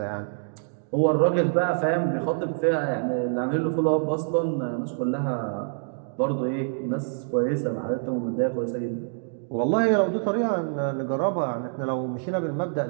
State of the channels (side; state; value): left; silent; digital silence